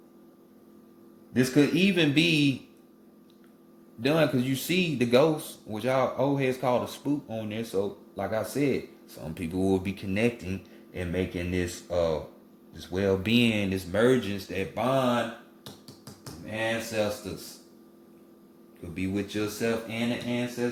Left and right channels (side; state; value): both; identical; correlation 1.00